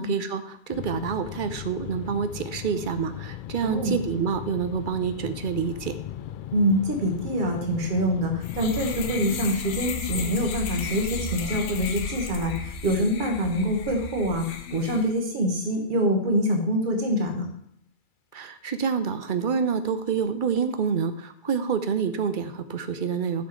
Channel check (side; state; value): right; late; 2.3 ms